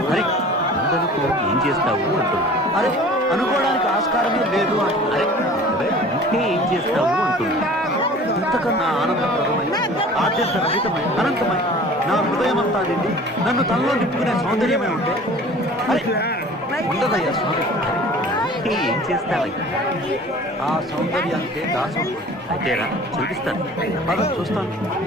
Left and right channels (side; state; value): both; normal; correlation 0.45